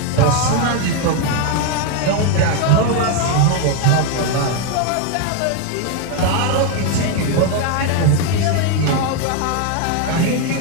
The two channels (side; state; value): both; different; correlation 0.01